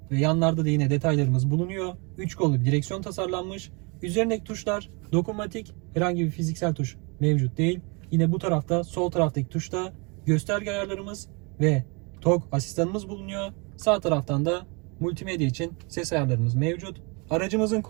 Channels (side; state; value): left; quieter; 31.2 dB